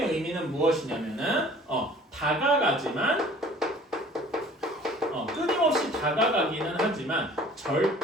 의미는 무엇이냐면은 다가가지만 끊임없이 다가가기는 하지만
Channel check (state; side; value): normal; both; correlation 0.50